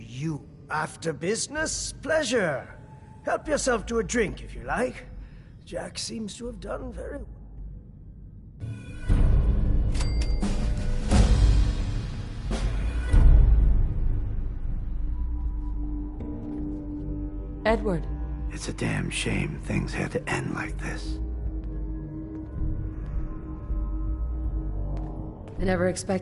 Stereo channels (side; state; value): both; identical; correlation 1.00